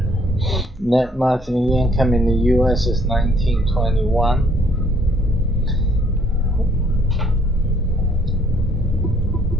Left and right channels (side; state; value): both; normal; correlation 0.64